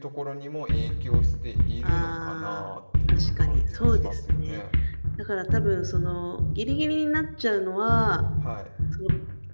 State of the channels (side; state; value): both; inverted; correlation -1.00